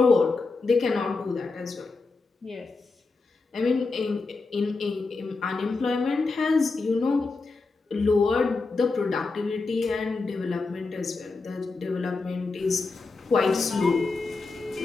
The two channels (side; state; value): right; quieter; 3.9 dB